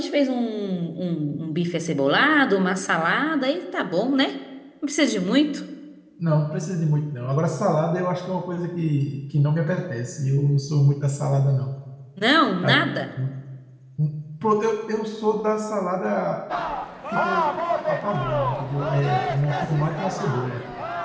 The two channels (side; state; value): both; identical; correlation 1.00